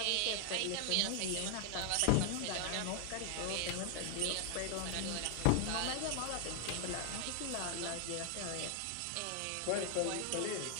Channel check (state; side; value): different; both; correlation 0.00